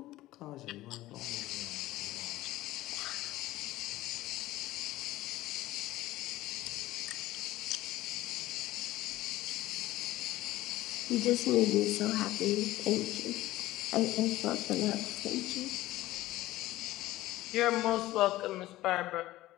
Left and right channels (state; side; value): quieter; right; 16.5 dB